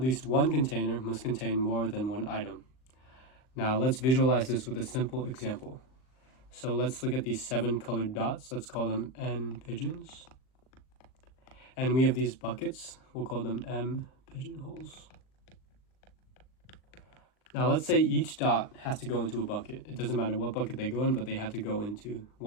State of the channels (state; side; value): late; right; 39 ms